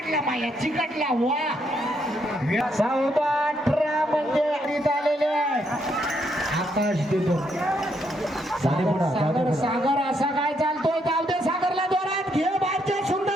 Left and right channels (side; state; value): both; normal; correlation 0.75